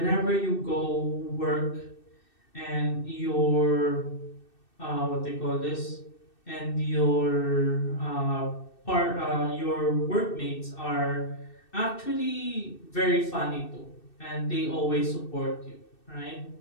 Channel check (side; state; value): right; late; 2.6 ms